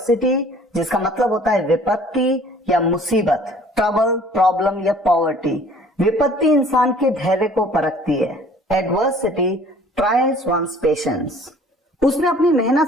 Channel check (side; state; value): both; normal; correlation 0.53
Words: जिसका मतलब होता है विपत्ति या मुसीबत, ट्रबल, प्रॉब्लम या पॉवर्टी। विपत्ति इंसान के धैर्य को परखती है। Adversity trials one's patience. उसने अपनी मेहनत